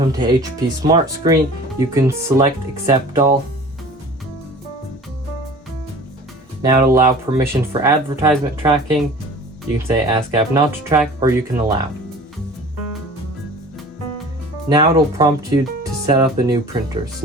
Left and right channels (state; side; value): normal; both; correlation 0.43